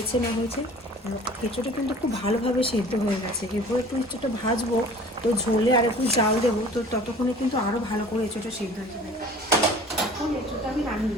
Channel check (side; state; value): both; normal; correlation 0.46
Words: না হয়েছে। এঁচড়টা কিন্তু খুব ভালোভাবে সেদ্ধ হয়ে গেছে। এরপর একটু এঁচড়টা ভাজবো, তো ঝোলে আর একটু জাল দেবো, তো ততক্ষণে কিন্তু আরও ভালো করে এঁচড়টা সেদ্ধ হয়ে যাবে। এখন এঁচড়টা আমি